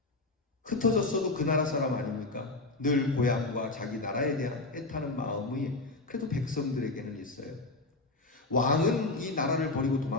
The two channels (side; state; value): right; quieter; 3.2 dB